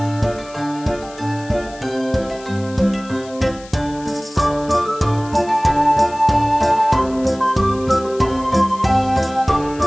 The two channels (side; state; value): left; noise; hiss, 21 dB below the sound